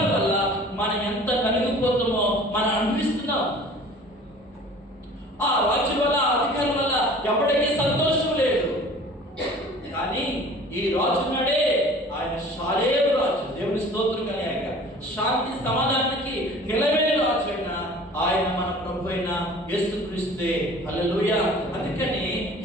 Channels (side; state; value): both; normal; correlation 0.46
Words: వల్ల మనం ఎంత నలిగిపోతామో మనం అనిపిస్తున్నాం. ఆ రాజుల వల్ల, అధికారుల వల్ల ఎవరికీ సంతోషం లేదు. కానీ ఈ రాజున్నాడే ఆయన శాలేరు రాజు. దేవుని స్తోత్రం కలగాక. శాంతి సమాధానానికి నిలబడిన రాజు అయినా ఆయన మన ప్రభు అయిన యేసుక్రీస్తే. హల్లెలూయా. అందుకని